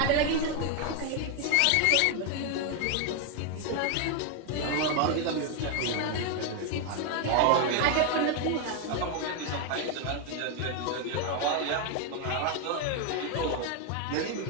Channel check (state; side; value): different; both; correlation 0.01